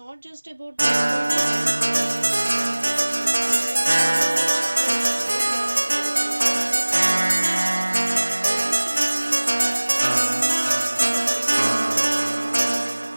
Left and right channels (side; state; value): both; inverted; correlation -1.00